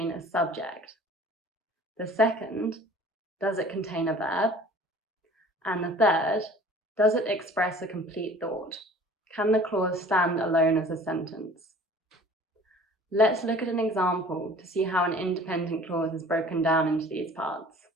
a subject? The second, does it contain a verb? And the third, does it express a complete thought? Can the clause stand alone as a sentence? Let's look at an example to see how an independent clause is broken down into these parts.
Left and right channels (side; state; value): both; normal; correlation 0.48